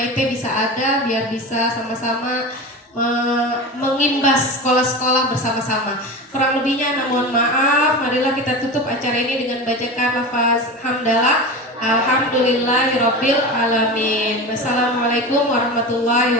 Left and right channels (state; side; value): normal; both; correlation 0.27